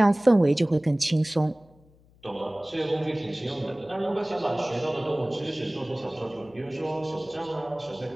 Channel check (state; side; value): noise; left; hum, 29 dB below the sound